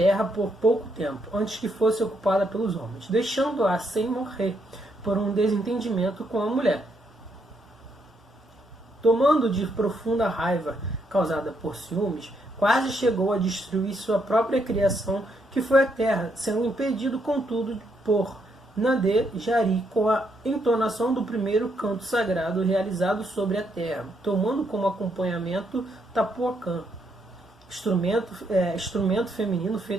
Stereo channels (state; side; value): normal; both; correlation 0.76